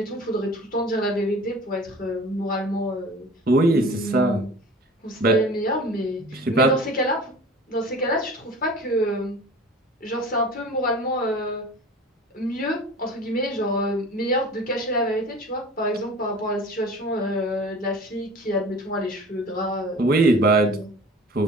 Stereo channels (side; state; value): both; normal; correlation 0.41